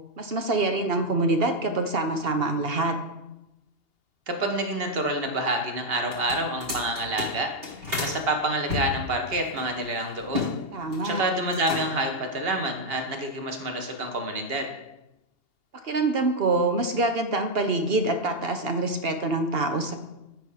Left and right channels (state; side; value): late; left; 2.8 ms